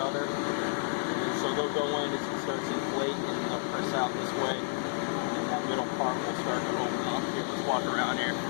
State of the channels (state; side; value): silent; right; digital silence